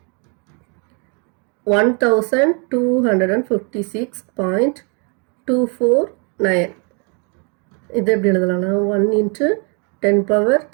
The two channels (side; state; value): left; quieter; 35.3 dB